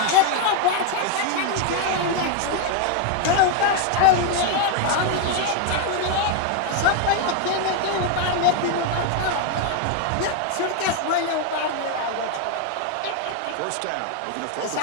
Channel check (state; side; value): different; both; correlation 0.01